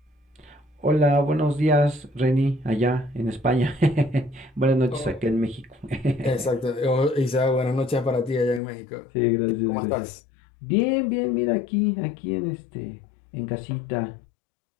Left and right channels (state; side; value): drops out; right; at 8.6 s